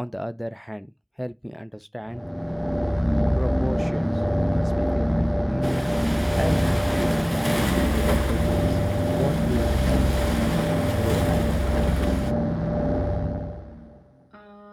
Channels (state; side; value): identical; both; correlation 1.00